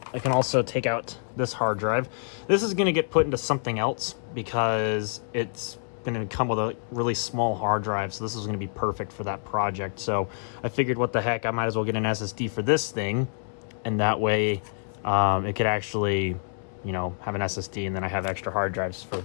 I can also take out this hard drive. This is going to get put into something else, because it's going to come with a really small hard drive, so this is going to be perfect for that project. So I figured, what the heck, I might as well get an SSD for this thing, and that way it could actually, you know, have an SSD, and then I have extra hard drives for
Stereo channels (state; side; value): silent; right; digital silence